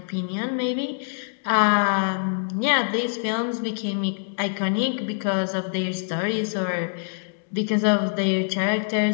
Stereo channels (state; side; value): silent; right; digital silence